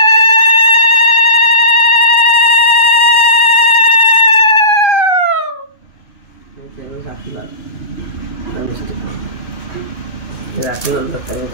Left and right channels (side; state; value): right; late; 2.6 ms